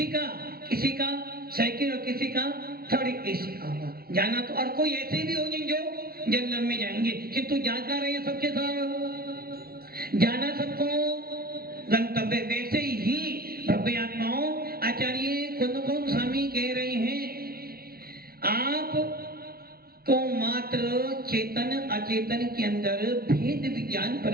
का, किसी का सेकंड और किसी का थर्ड एसी का होगा। जाना तो और कोई ऐसे भी होंगे जो जनरल में जाएंगे, किंतु जाकर रहे सबके साथ जाना सबको गंतव्य। वैसे ही भव्य आत्माओं आचार्य कुंदकुंद स्वामी कह रहे हैं आप को मात्र चेतन अचेतन के अंदर भेद विज्ञान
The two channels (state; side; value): late; left; 0.44 ms